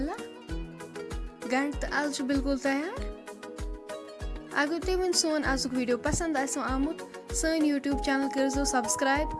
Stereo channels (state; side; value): identical; both; correlation 1.00